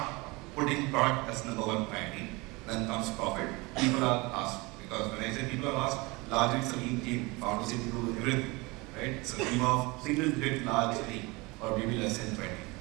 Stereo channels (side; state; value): left; quieter; 24.8 dB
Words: putting product as number one priority. Then comes profit. People are asked, because when I say people are asked, largely it's a lean team. Founders need to do everything, right? It's a team of single-digit large team, or maybe less than 20.